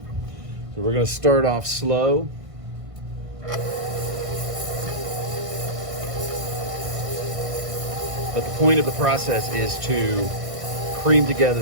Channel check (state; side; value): late; left; 1.5 ms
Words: we're going to start off slow. But the point of the process is to cream together